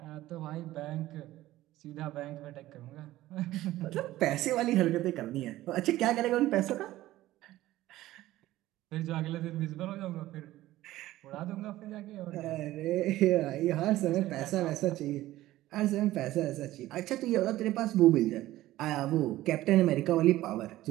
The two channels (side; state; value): left; quieter; 15.8 dB